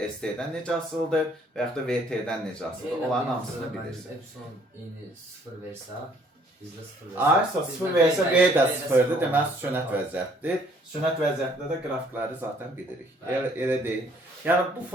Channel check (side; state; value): both; normal; correlation 0.62